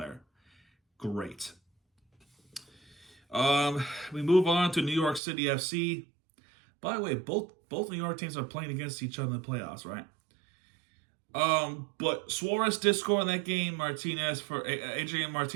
Great. We move on to New York City FC. By the way, both New York teams are playing against each other in the playoffs, right? But Suarez did score in that game. Adrian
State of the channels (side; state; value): left; drops out; at 5.2 s